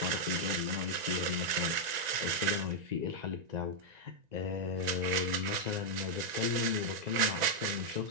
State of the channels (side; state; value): left; late; 1.9 ms